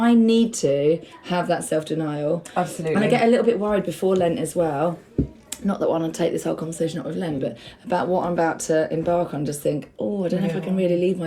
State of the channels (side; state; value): both; identical; correlation 1.00